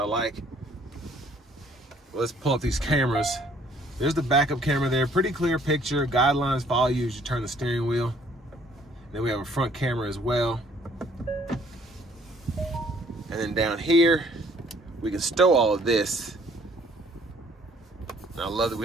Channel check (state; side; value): normal; both; correlation 0.60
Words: like. Well, let's pull up these cameras. There's the backup camera there. Pretty clear picture. Guidelines follow you as you turn the steering wheel. Then we have a front camera as well. And then down here, we can stow all of this. And I love that